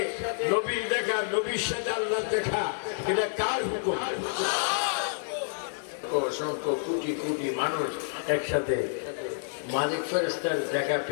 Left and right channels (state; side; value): silent; right; 59 dB below the other